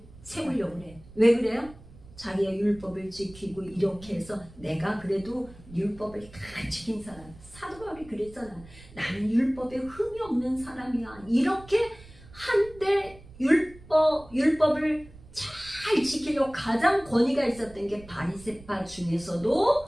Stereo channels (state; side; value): noise; right; rumble, 21 dB below the sound